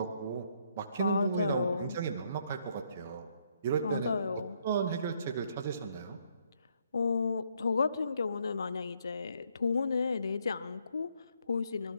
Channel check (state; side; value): inverted; both; correlation -0.71